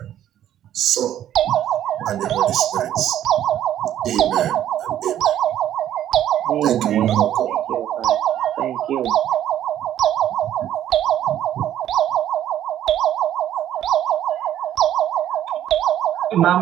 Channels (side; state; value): left; quieter; 11.4 dB